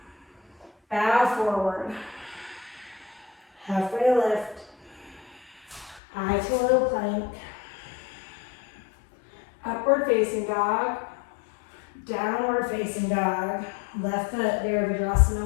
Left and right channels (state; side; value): drops out; right; at 6.0 s